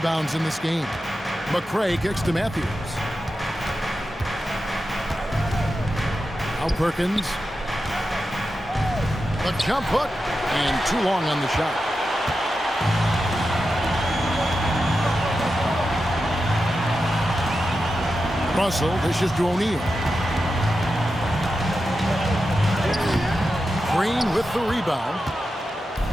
in this game. McCray kicks to Matthews. Now Perkins. The jump hook. And too long on the shot. Russell dishes to O'Neal. Green with the rebound.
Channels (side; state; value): both; normal; correlation 0.90